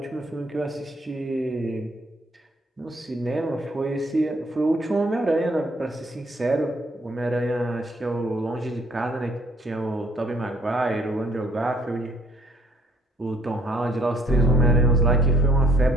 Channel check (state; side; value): normal; both; correlation 0.63